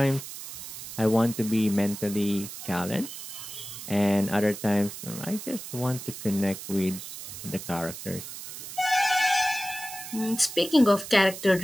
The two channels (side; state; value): right; noise; hiss, 11 dB below the sound